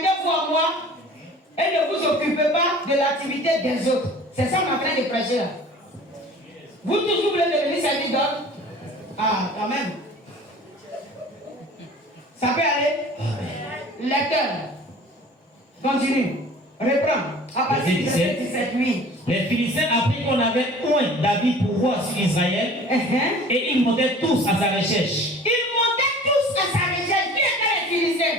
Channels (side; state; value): both; normal; correlation 0.45